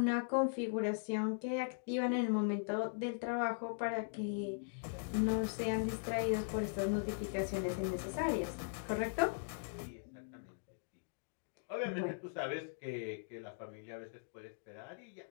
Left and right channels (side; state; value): right; silent; digital silence